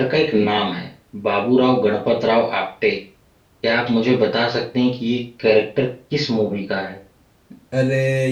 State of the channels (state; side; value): identical; both; correlation 1.00